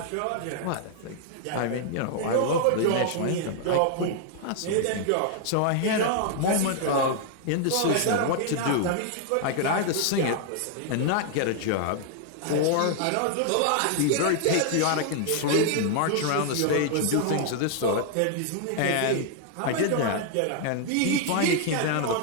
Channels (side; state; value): both; different; correlation 0.00